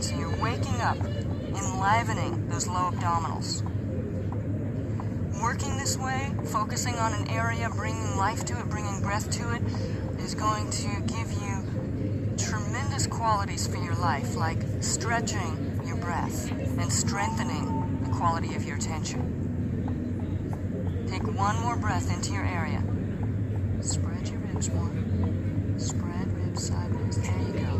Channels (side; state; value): both; identical; correlation 1.00